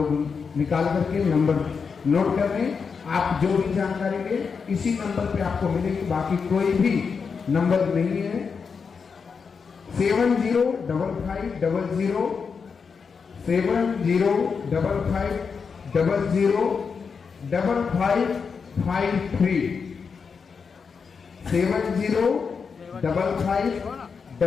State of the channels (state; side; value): quieter; right; 5.6 dB